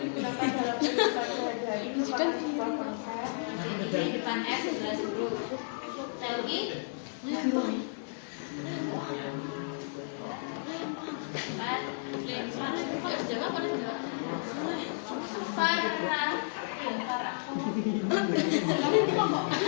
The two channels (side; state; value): right; silent; 56 dB below the other